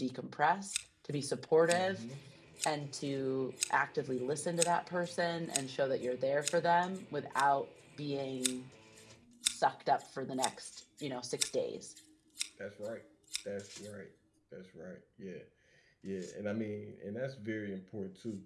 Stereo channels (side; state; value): both; identical; correlation 1.00